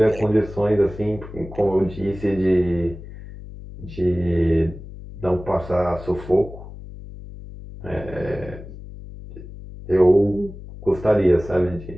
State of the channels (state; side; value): noise; left; hum, 14 dB below the sound